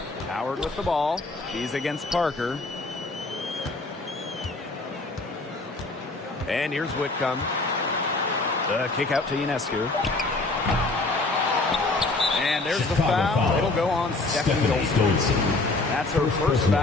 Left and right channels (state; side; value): quieter; right; 3.2 dB